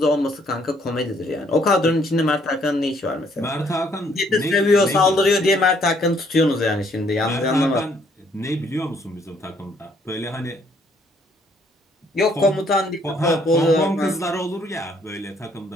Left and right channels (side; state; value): both; normal; correlation 0.66